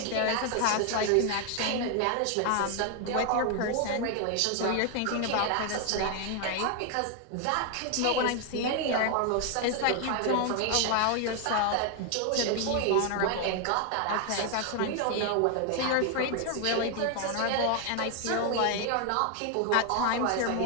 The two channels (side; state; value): both; different; correlation 0.01